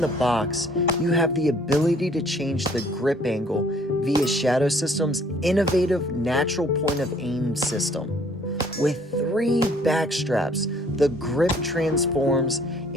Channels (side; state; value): both; normal; correlation 0.59